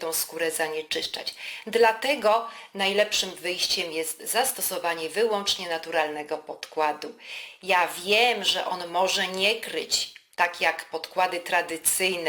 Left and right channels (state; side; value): identical; both; correlation 1.00